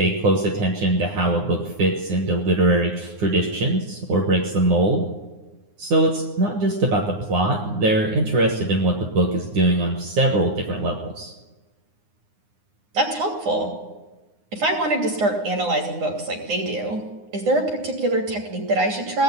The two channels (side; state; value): left; late; 9.7 ms